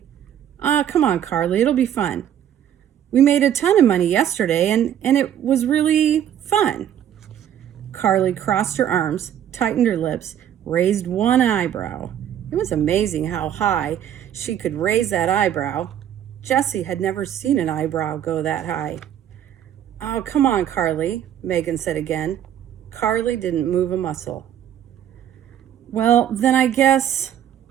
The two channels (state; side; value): quieter; left; 10.2 dB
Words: Come on, Carly, it'll be fun. We made a ton of money yesterday, and it was really fun." Carly crossed her arms, tightened her lips, raised one eyebrow. It was amazing how high she could raise that eyebrow. Jessie had never seen an eyebrow go that high. "Oh, come on, Carly," Megan said again. Carly didn't move a muscle. "Well, then I guess,"